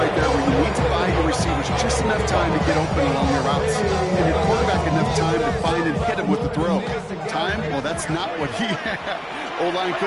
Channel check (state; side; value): identical; both; correlation 1.00